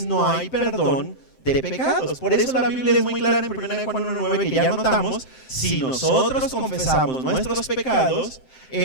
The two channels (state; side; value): late; right; 7.7 ms